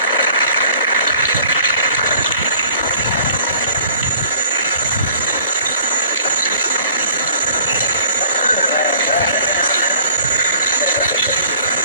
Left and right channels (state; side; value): inverted; both; correlation -0.52